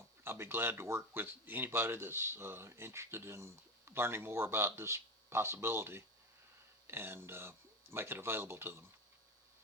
be glad to work with anybody that's interested in learning more about this possibility and make it available to them.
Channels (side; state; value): both; normal; correlation 0.21